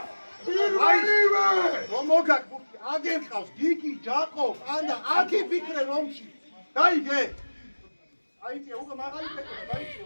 პირველივე რომ მოგაკურთი აგერ ყავს გიგი ჯაკო ანა აკი ფიქრე რომში დაიგე აიწე უკვე მაღალი ფიქრე დაიწე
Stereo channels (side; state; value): both; inverted; correlation -1.00